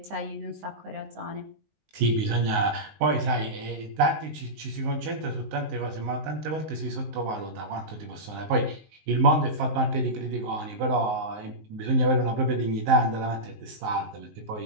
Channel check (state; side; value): late; left; 19 ms